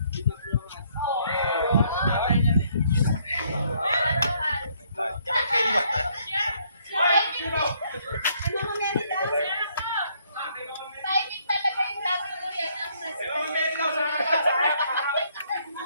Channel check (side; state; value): both; inverted; correlation -0.68